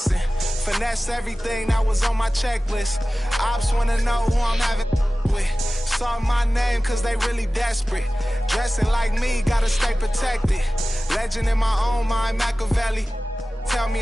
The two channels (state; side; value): normal; both; correlation 0.97